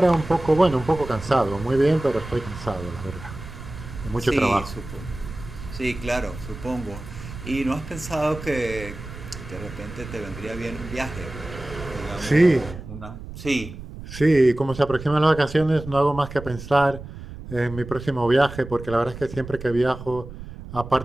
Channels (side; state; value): right; noise; rumble, 12 dB below the sound